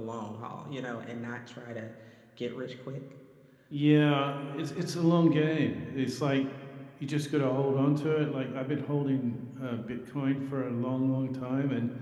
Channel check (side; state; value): both; identical; correlation 1.00